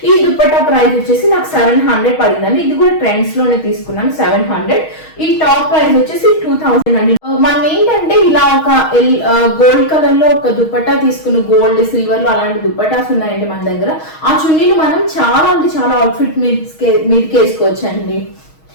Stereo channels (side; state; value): right; late; 6.3 ms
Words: ఈ దుప్పట్టా ప్రైస్ వచ్చేసి నాకు 700 పడిందండి. ఇది కూడా ట్రెండ్స్ లోనే తీసుకున్నాను 700. ఈ టాప్ ప్రైస్ వచ్చేసి 2000 అండి. మనం ఏంటంటే ఇలా ఒక గోల్డ్ కలర్ లో ఒక దుప్పట్టా తీసుకున్న, గోల్డ్ సిల్వర్ లో అలాంటి దుప్పటాస్ ఉన్నాయండి మన దగ్గర. ఆ చున్నీలు మనం చాలా అంటే చాలా అవుట్ఫిట్ మీదకి వేసుకోవచ్చు అండి.